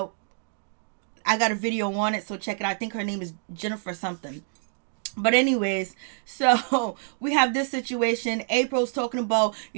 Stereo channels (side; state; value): left; silent; 60 dB below the other